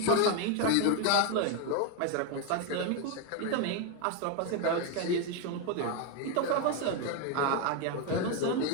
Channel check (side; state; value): both; different; correlation 0.01